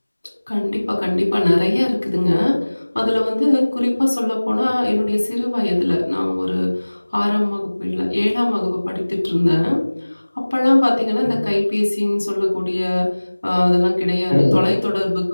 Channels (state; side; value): inverted; both; correlation -1.00